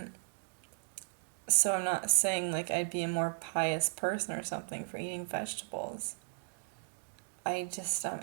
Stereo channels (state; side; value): silent; left; digital silence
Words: so I'm not saying like I'd be a more pious person or something for eating vegetables. I just